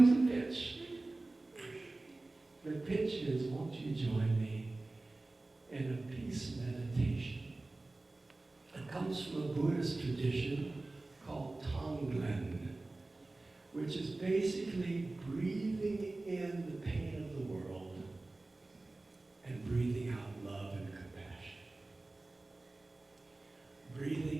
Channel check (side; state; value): left; quieter; 3.1 dB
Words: the pitch. The pitch is, won't you join me in a peace meditation? It comes from a Buddhist tradition called Tonglen, which is basically breathing in the pain of the world and breathing out love and compassion.